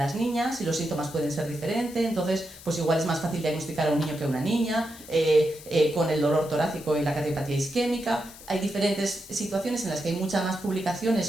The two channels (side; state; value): left; noise; hiss, 18 dB below the sound